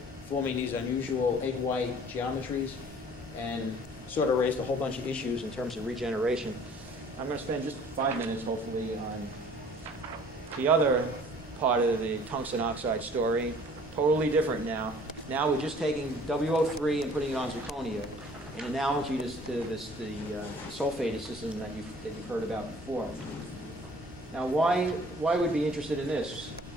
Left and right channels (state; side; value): normal; both; correlation 0.52